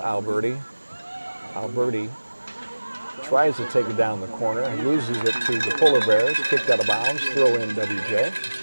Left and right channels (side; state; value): both; inverted; correlation -1.00